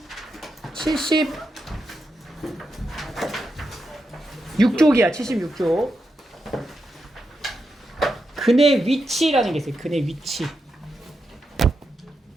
76쪽이야. 76쪽. 근의 위치라는 게 있어요. 근의 위치.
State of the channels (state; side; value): normal; both; correlation 0.86